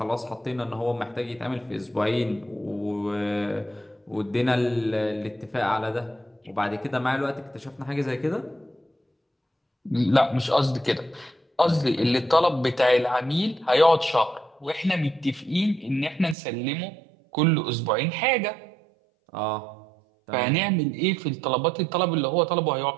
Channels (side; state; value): left; drops out; at 16.4 s